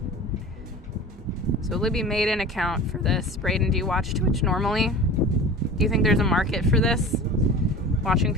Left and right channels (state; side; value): normal; both; correlation 0.36